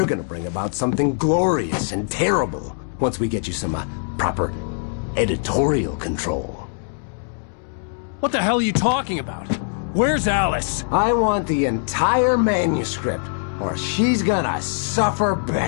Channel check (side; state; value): right; silent; digital silence